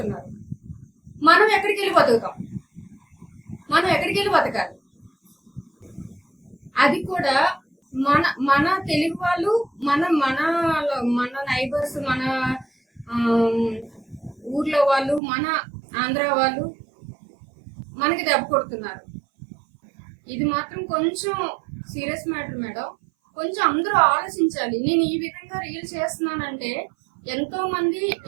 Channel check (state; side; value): drops out; left; at 15.2 s